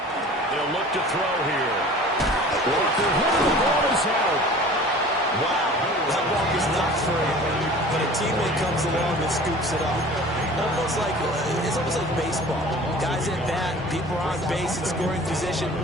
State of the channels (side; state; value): both; normal; correlation 0.43